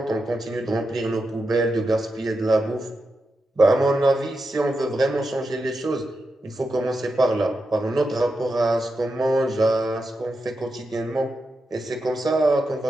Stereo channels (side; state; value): both; normal; correlation 0.88